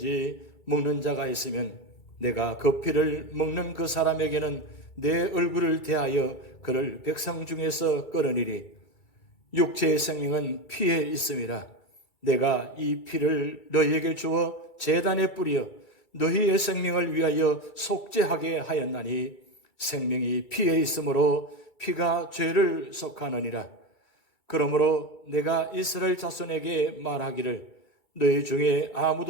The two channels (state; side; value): late; right; 2.3 ms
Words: 먹는 자가 있으면 내가 그 피를 먹는 그 사람에게는 내 얼굴을 대하여 그를 백성 중에서 끊으리리. 육체의 생명은 피에 있음이라. 내가 이 피를 너희에게 주어 제단에 뿌려 너희의 생명을 위하여 속죄하게 하였나니 생명이 피에 있으므로 피가 죄를 속하느니라. 그러므로 내가 이스라엘 자손에게 말하기를 너희 중에